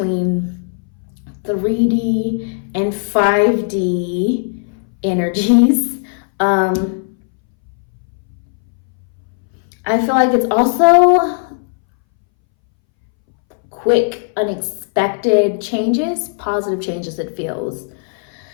3D and 5D energies. I feel like it's also quick, unexpected changes, positive changes. It feels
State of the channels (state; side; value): silent; right; 64 dB below the other